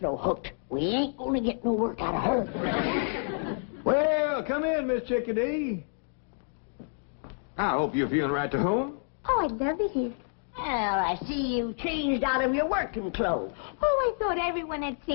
hooked, we ain't gonna get no work out of her. Well, come in, Miss Chickadee. I hope you're feeling right to home. Oh, I'd love it here. Well, I see you changed out of your working clothes. Oh, I thought everyone had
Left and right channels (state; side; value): silent; right; digital silence